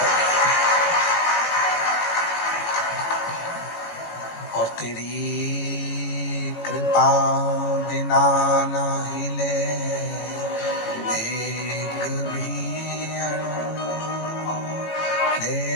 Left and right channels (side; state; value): right; late; 18 ms